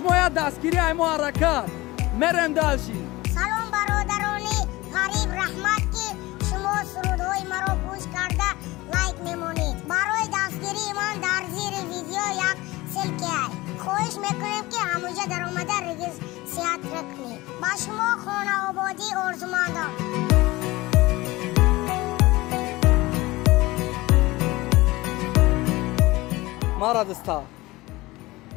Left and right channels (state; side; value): quieter; right; 20.2 dB